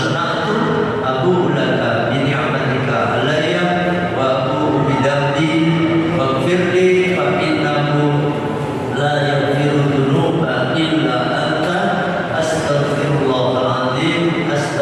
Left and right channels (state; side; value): identical; both; correlation 1.00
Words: abu'u laka bi ni'matika 'alayya wa abu'u bi dhanbi faghfir li fa innahu la yaghfiru dhunuba illa anta astaghfirullahal azim